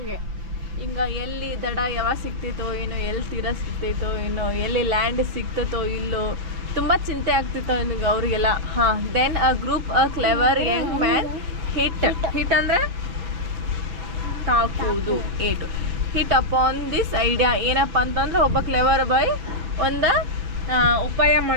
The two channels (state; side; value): late; left; 5.9 ms